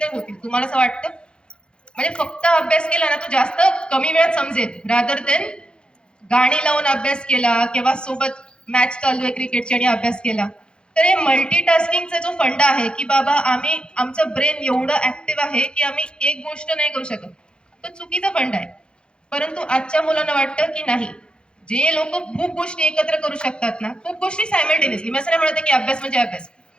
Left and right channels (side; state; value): right; late; 0.053 ms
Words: होतील. तुम्हाला असं वाटतं? म्हणजे फक्त अभ्यास केला ना तो जास्त कमी वेळात समजेल, रादर देन गाणी लावून अभ्यास केला किंवा सोबत मॅच चालू आहे क्रिकेटची आणि अभ्यास केला. तर हे मल्टीटास्किंगचा जो फंडा आहे की बाबा आमचं ब्रेन एवढं ऍक्टिव्ह आहे की आम्ही एक गोष्ट नाही करू शकत, तो चुकीचा फंडा आहे. परंतु आजच्या मुलांना वाटतं की नाही, जे लोक खूप गोष्टी एकत्र करू शकतात ना, खूप गोष्टी सायमल्टेनियसली, मी असं नाही म्हणते की अभ्यास म्हणजे अभ्यास,